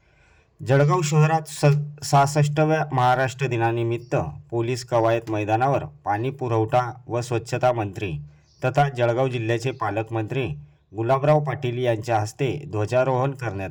जळगाव शहरात 66व्या महाराष्ट्र दिनानिमित्त पोलीस कवायत मैदानावर पाणी पुरवठा व स्वच्छता मंत्री तथा जळगाव जिल्ह्याचे पालकमंत्री गुलाबराव पाटील यांच्या हस्ते ध्वजारोहण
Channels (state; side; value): identical; both; correlation 1.00